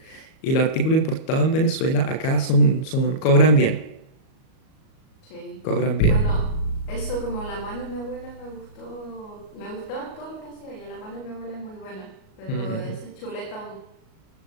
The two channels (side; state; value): right; late; 38 ms